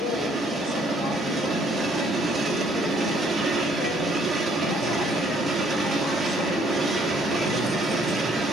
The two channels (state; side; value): normal; both; correlation 0.64